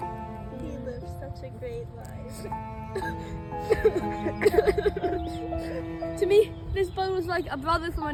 He lived such a great life. To me, this bird was like a brother from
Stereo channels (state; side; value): identical; both; correlation 1.00